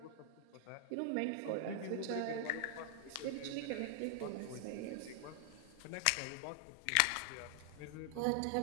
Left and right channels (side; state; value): both; different; correlation 0.00